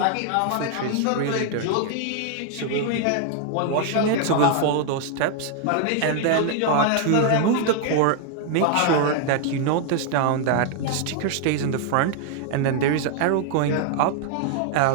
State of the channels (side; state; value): both; different; correlation 0.00